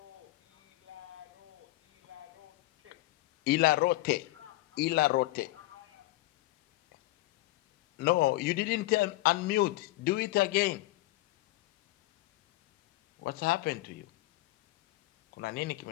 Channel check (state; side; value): quieter; right; 18.0 dB